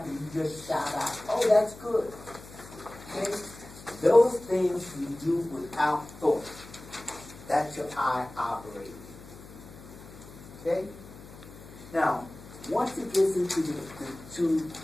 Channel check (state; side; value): noise; left; hum, 18 dB below the sound